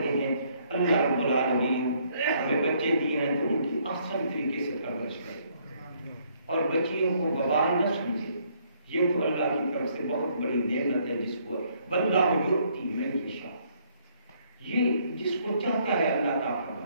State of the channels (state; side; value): inverted; both; correlation -0.67